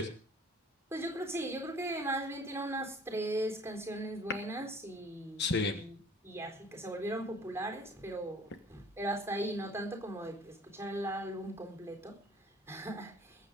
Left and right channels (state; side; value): normal; both; correlation 0.51